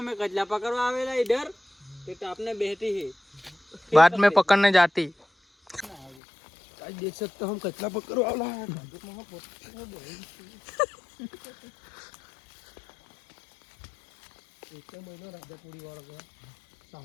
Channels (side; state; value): right; drops out; at 6.2 s